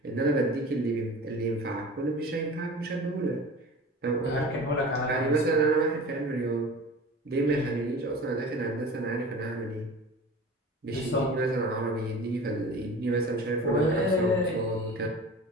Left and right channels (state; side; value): normal; both; correlation 0.37